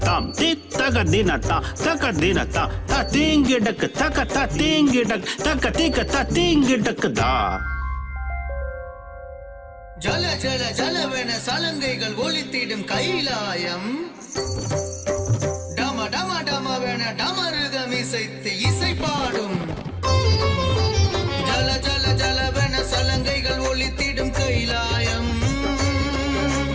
తిత్తగ దినతా తక దినతా తతింగిడక్ తక తతింగిడక్ తక తిక తతింగిడక్ దా ஜல ஜல ஜலவென சலங்கைகள் ஒலித்திடும் கைலாயம் டம டம டமவென டமருகம் இசைத்து இசை பாடும் ஜல ஜல ஜலவென சலங்கைகள் ஒலித்திடும் கைலாயம்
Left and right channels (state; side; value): identical; both; correlation 1.00